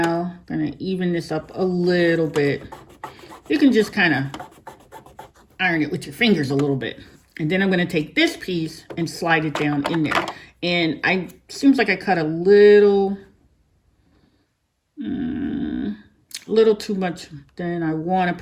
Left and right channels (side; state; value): both; identical; correlation 1.00